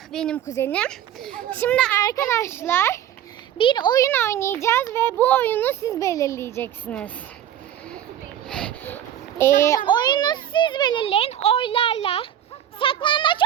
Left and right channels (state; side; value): quieter; left; 10.8 dB